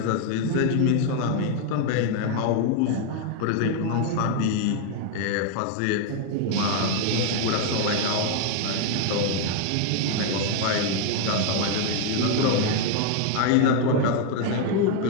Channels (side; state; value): both; different; correlation 0.00